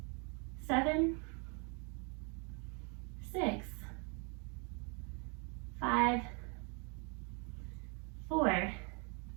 7, 6, 5, 4,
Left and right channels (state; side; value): quieter; left; 34.7 dB